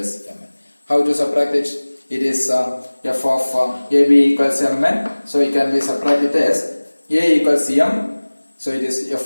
mn. How to subtract it? It is f of ab equals mn. So it can be subtracted as a equals m. So it is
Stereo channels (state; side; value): inverted; both; correlation -1.00